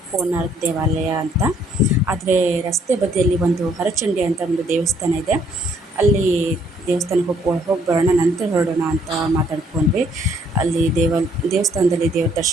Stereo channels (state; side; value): normal; both; correlation 0.65